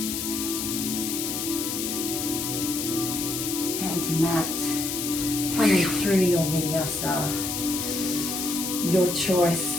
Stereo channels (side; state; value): left; noise; hiss, 3 dB below the sound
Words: Hand to mat, coming through your vinyasa, your choice,